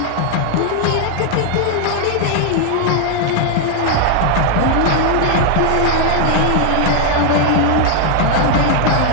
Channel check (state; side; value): different; both; correlation 0.00